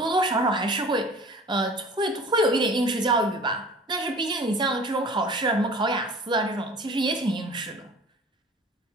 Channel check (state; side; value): normal; both; correlation 0.44